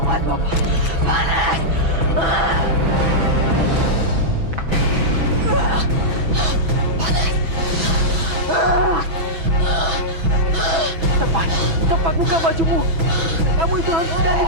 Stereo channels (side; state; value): left; late; 6.1 ms